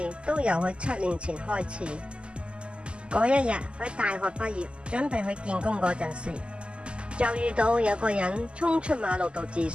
都由佢7年前開始。嗰一日佢大學畢業，準備去見工嗰陣時，就遇到有個人衝出馬路度自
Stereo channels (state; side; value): late; left; 0.052 ms